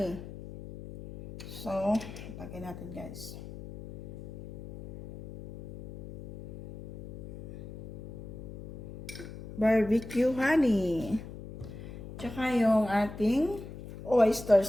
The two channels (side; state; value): left; noise; hum, 13 dB below the sound